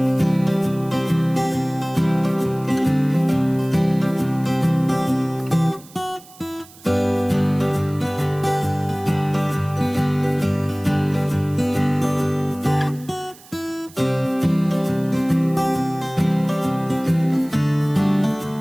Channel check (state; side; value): noise; right; hiss, 23 dB below the sound